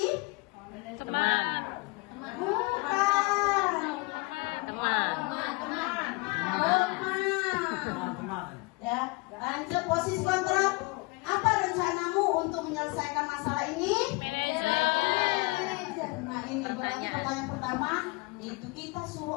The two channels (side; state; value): right; quieter; 27.5 dB